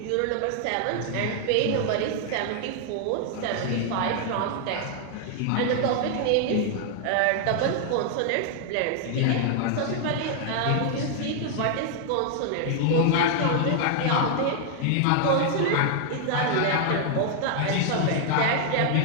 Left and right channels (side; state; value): both; different; correlation 0.00